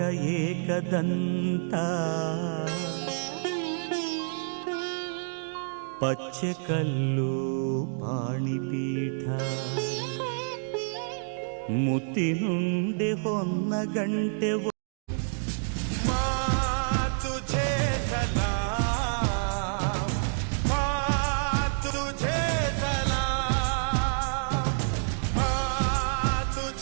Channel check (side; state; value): left; silent; digital silence